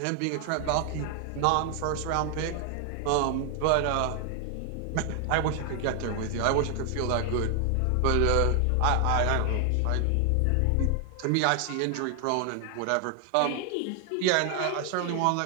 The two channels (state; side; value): different; both; correlation 0.00